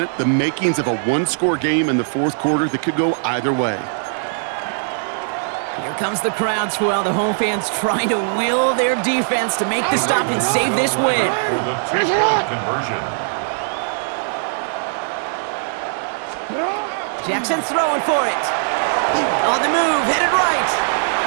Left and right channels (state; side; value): silent; left; digital silence